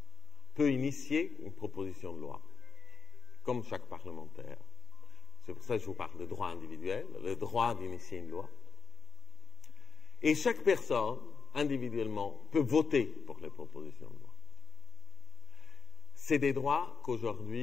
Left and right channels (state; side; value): quieter; right; 5.8 dB